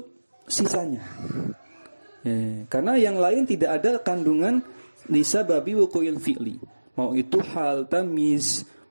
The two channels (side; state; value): both; inverted; correlation -1.00